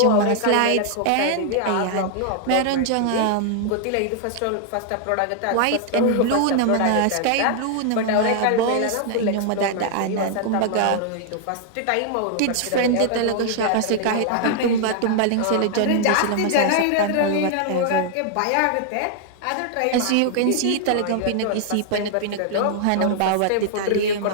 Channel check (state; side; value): different; both; correlation 0.00